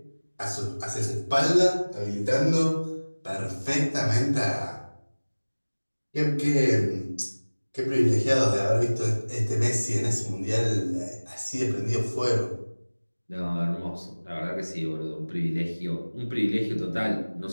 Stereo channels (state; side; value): inverted; both; correlation -1.00